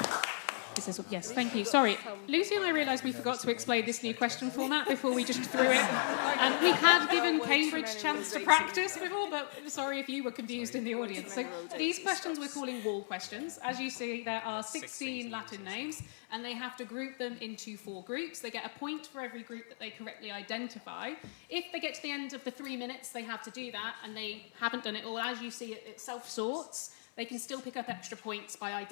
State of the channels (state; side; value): silent; right; 54 dB below the other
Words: Yes, thank you. Sorry, Lucy and I realised we forgot to explain this new question format before we just threw it. And we had given Cambridge a chance to practice before, but sorry if you were confused in the audience. So these questions we're calling wall questions. As you see, there are 16 Latin names, and they have to group them into 4 groups. They get a point for every group that they correctly identify. If they get to the end of the 3 minutes, they have to do that, and they haven't done it all. As you see, it self-sorts. They can still pick up extra points by